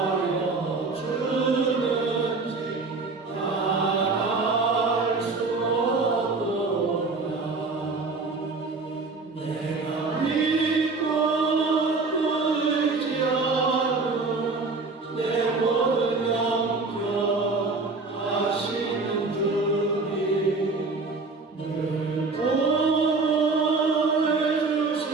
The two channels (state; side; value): quieter; left; 3.9 dB